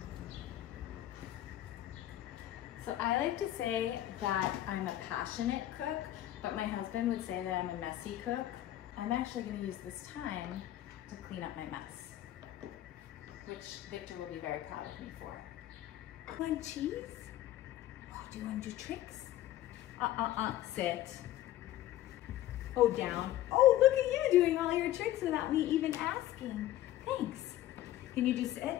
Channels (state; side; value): quieter; right; 13.7 dB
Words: So I like to say that I'm a passionate cook, but my husband would say that I'm a messy cook. I'm actually going to use this time to clean up my mess, which Victor will be very proud of me for. Want cheese? Oh, do you want to do tricks? Sit. Oh, down. Oh, look at you doing all your tricks without me even asking. Thanks. Can you do